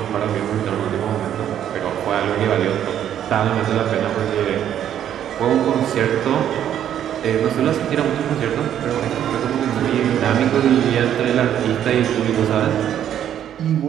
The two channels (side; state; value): left; quieter; 10.3 dB